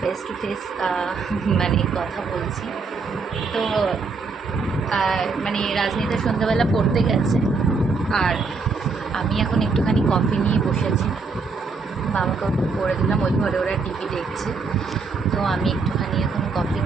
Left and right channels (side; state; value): left; quieter; 4.4 dB